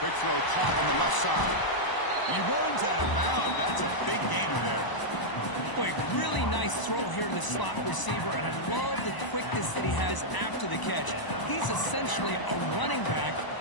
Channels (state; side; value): late; right; 1.0 ms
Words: Quick throw caught on the left side. And he runs out of bounds. That's a big gainer there. Boy, really nice throw here to the slot receiver, and I love the quickness that he has after the catch. He's essentially a running back